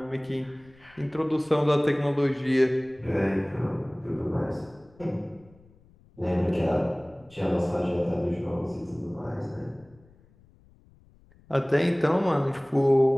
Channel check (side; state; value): left; noise; rumble, 28 dB below the sound